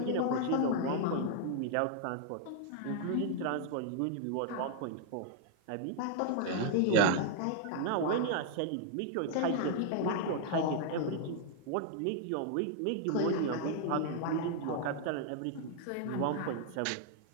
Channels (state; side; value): different; both; correlation -0.01